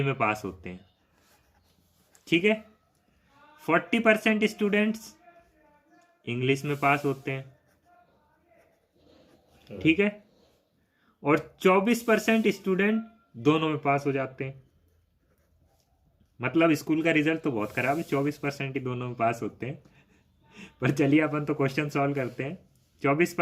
में पास होते हैं। ठीक है, 40% स्टूडेंट्स इंग्लिश में पास होते हैं। ठीक है, और 24% स्टूडेंट दोनों में पास हो जाते हैं। मतलब स्कूल का रिजल्ट तो बहुत खराब है, 24% ही दोनों में पास होते हैं। पर चलिए अपन तो क्वेश्चन सॉल्व करते हैं।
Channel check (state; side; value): identical; both; correlation 1.00